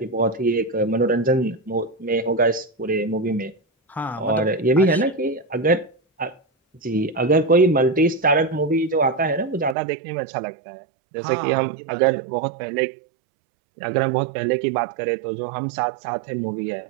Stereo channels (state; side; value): drops out; left; at 9.8 s